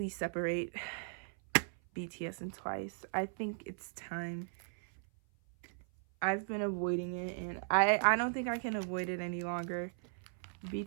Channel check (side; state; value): left; silent; 53 dB below the other